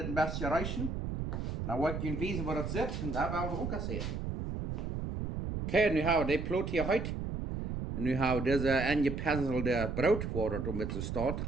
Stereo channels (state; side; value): noise; right; rumble, 4 dB below the sound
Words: bisschen reichen. Dann wollte ich wissen, wo das sitzt. Und da werden wir auch sehen. Okay, nu haben wir die Plot hier heute. Und nu haben wir diese angepinselte Brot, wo das mit so steht,